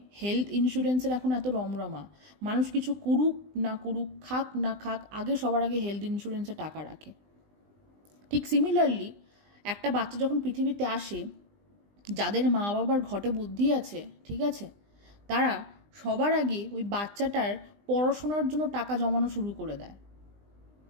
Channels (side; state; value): left; late; 20 ms